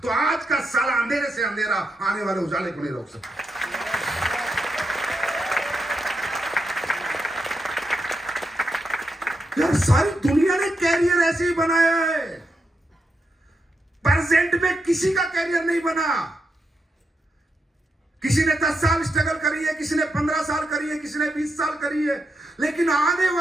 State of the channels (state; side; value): normal; both; correlation 0.84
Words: तो आज का साला अंधेरे से अंधेरा आने वाले उजाले को नहीं रोक सकता। यार सारी दुनिया ने कैरियर ऐसे ही बनाया है, प्रेजेंट में किसी का कैरियर नहीं बना। किसी ने 10 साल स्ट्रगल करी है, किसी ने 15 साल करी है, किसी ने 20 साल करी है, लेकिन आने